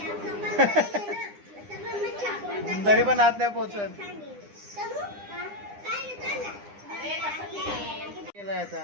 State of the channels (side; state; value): left; late; 9.9 ms